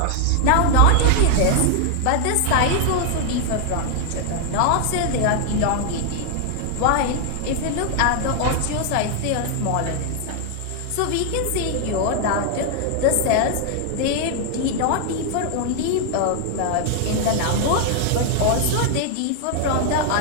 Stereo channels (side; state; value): both; different; correlation 0.00